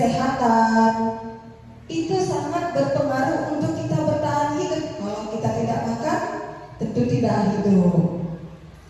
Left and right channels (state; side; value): identical; both; correlation 1.00